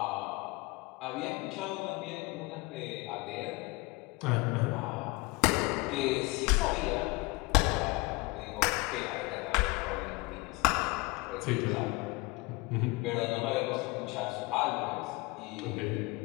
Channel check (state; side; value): quieter; right; 24.6 dB